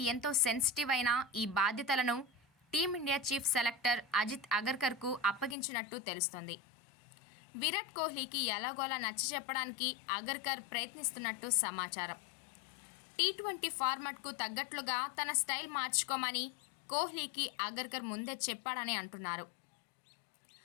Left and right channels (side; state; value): right; drops out; at 5.6 s